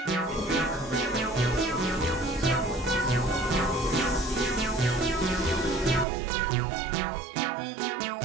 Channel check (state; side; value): drops out; left; at 6.1 s